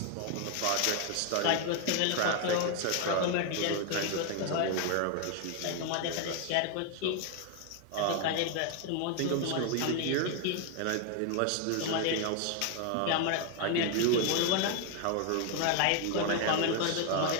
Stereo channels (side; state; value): both; different; correlation 0.01